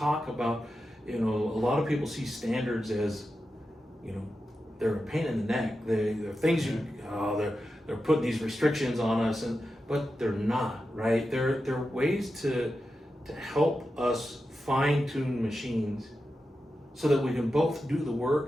about, a lot of people see standards as, they're a pain in the neck. They're things they're putting these restrictions on us, but they're not, right? They're ways to help us fine tune machines so that we can both do the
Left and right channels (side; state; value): both; normal; correlation 0.90